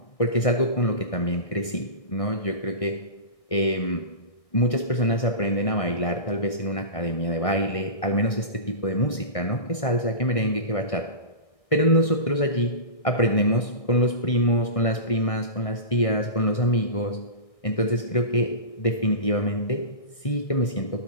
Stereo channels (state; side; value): late; right; 1.6 ms